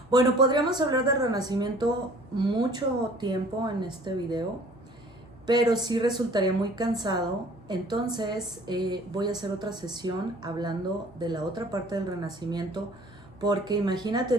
Bueno, podríamos hablar del Renacimiento mucho tiempo en este video, pero sí resultaría muy cansado. Entonces voy a hacer otra sesión hablando de la otra parte del Renacimiento, porque imagínate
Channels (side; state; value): both; normal; correlation 0.52